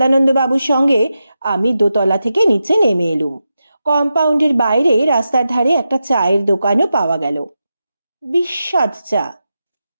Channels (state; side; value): inverted; both; correlation -0.89